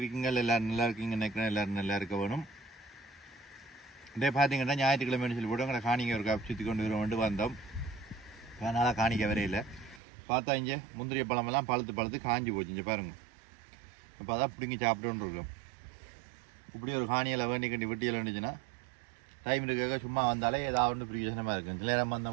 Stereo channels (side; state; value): left; drops out; at 10.0 s